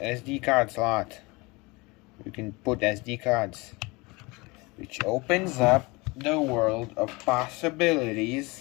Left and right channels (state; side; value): quieter; right; 25.1 dB